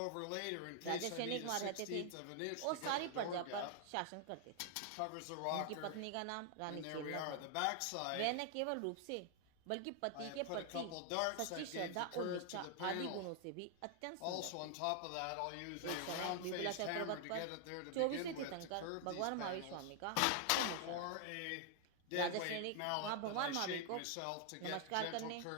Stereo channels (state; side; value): different; both; correlation 0.00